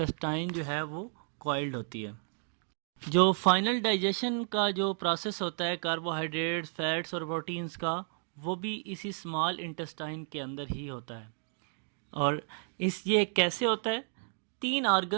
जो है वो कॉइल्ड होती है। जो फाइनल डाइजेशन का जो प्रोसेस होता है कार्बोहाइड्रेट्स, फैट्स और प्रोटीन्स का, वो भी इसी स्मॉल इंटेस्टाइन के अंदर ही होता है। और ये कैसे होता है? 3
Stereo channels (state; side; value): silent; left; 56 dB below the other